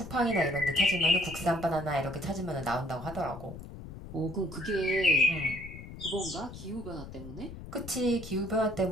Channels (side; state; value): left; noise; rumble, 12 dB below the sound